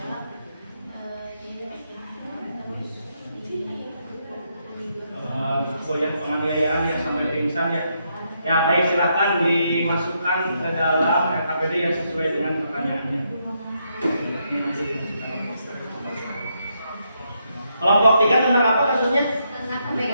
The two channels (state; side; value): inverted; both; correlation -0.79